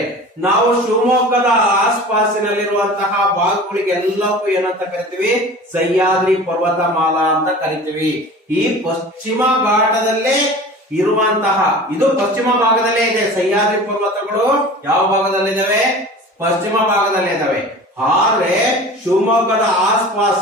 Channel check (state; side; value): normal; both; correlation 0.39